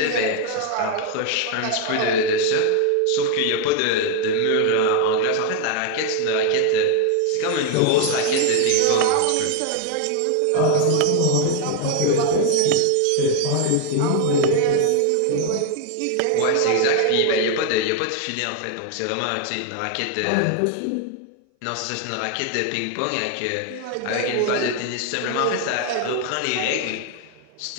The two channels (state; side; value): different; both; correlation 0.01